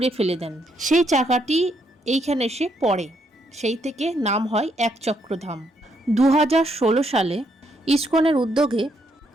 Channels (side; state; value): both; normal; correlation 0.74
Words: ফেলে দেন। সেই চাকাটি এইখানে এসে পড়ে, সেই থেকে নাম হয় এক চক্রধাম। 2016 সালে ইস্কনের উদ্যোগে